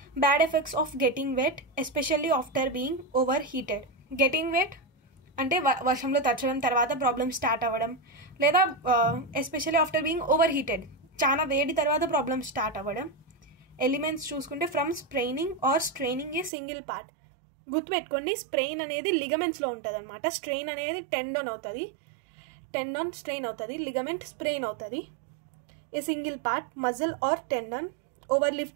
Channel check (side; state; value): left; drops out; at 16.5 s